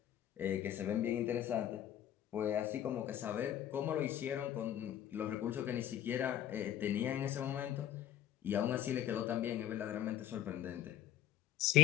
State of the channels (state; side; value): quieter; right; 11.0 dB